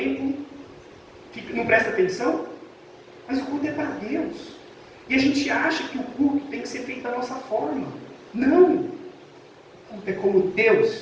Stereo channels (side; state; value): both; identical; correlation 1.00